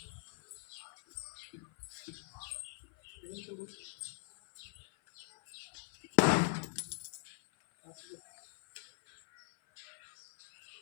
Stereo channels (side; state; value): right; silent; 50 dB below the other